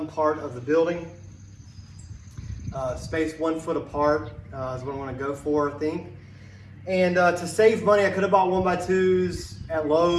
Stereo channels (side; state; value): both; identical; correlation 1.00